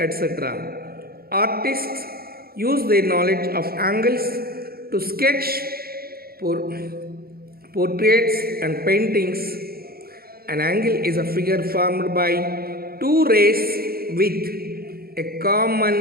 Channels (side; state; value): left; late; 0.44 ms